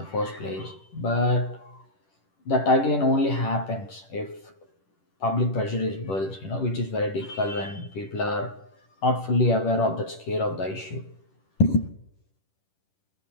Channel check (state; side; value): late; right; 10 ms